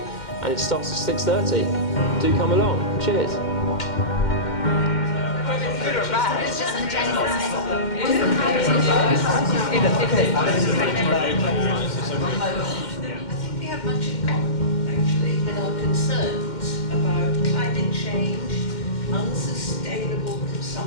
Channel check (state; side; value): late; right; 2.1 ms